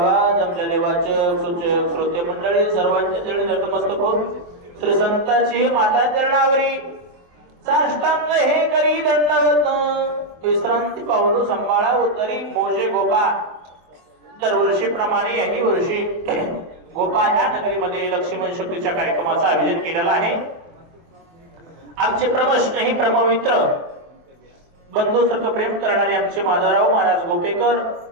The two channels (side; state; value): left; late; 24 ms